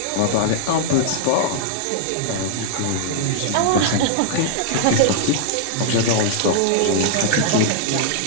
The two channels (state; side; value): different; both; correlation -0.01